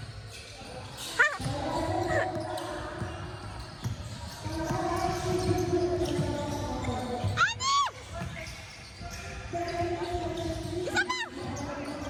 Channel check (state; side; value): identical; both; correlation 1.00